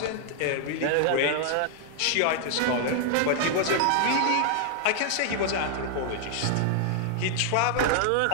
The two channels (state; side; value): different; both; correlation 0.00